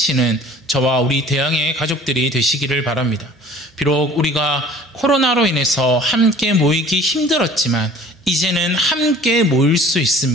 저와 우리 대양의 가족들이 되시기를 바랍니다. 비록 우리가 코로나로 인해서 함께 모이기 힘들었지만 이제는 함께 모일 수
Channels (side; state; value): both; normal; correlation 0.48